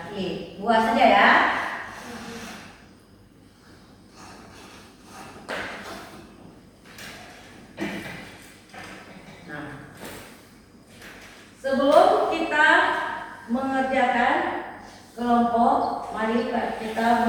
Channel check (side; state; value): both; identical; correlation 1.00